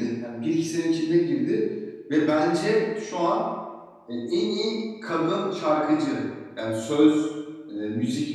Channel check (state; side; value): identical; both; correlation 1.00